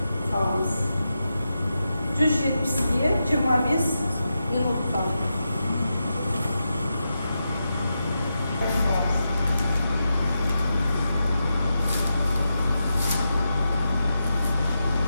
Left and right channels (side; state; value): both; inverted; correlation -0.88